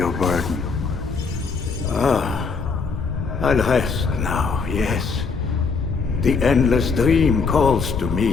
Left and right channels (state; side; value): quieter; right; 4.9 dB